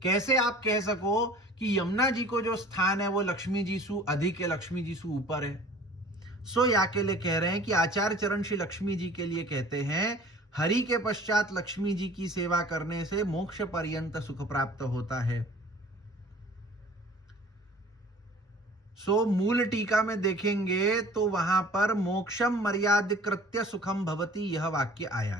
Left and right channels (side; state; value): both; normal; correlation 0.47